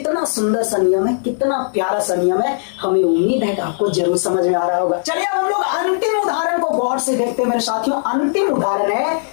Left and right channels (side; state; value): right; silent; digital silence